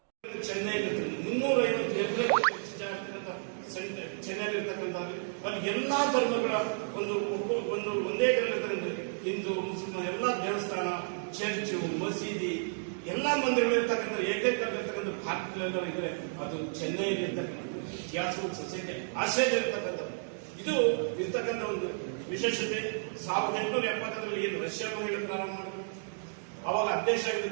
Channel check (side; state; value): left; silent; digital silence